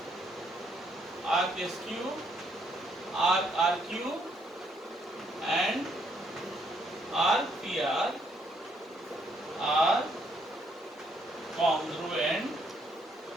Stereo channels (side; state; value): both; normal; correlation 0.71